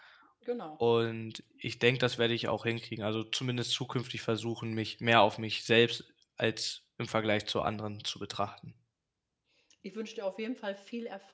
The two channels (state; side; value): identical; both; correlation 1.00